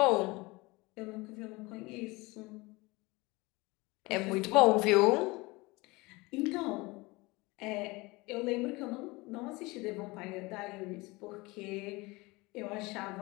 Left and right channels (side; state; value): right; quieter; 23.5 dB